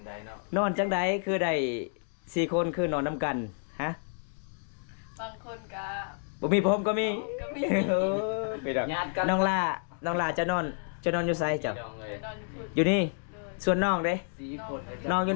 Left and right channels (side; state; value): right; silent; digital silence